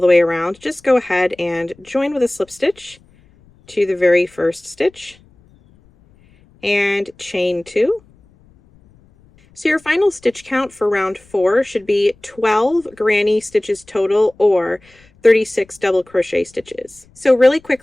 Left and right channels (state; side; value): noise; left; rumble, 30 dB below the sound